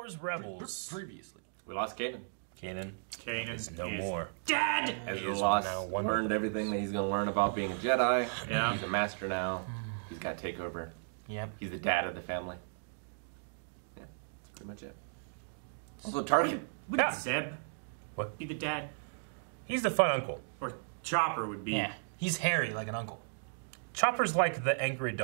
Rebels. Previously. We lost Kanan. Kanan is no is more. Dead! Ezra lost, learned everything that he's going to learn about being a Jedi. Yeah. He's a master now. He's got to take over. Yep. He's the dad of the family. Yeah, that's pretty much it. Also, Target. Wouldn't Zeb What? be the dad? He's the fun uncle. Or Chopper would be. Yeah. He's hairy like an uncle. Chopper's like the angry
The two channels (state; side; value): silent; left; digital silence